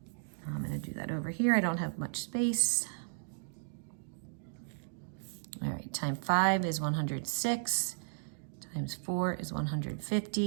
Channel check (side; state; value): left; silent; digital silence